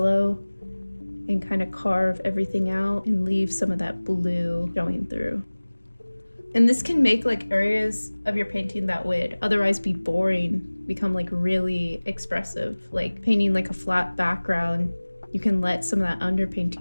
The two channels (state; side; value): inverted; both; correlation -1.00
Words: and kind of carve everything out and leave some of that blue showing through. And this can make like areas of your painting that would otherwise be boring become like really expressive. Like painting like a flat background, you can let some of that